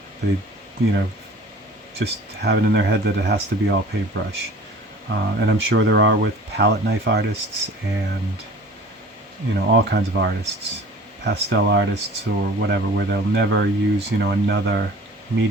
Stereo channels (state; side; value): normal; both; correlation 0.45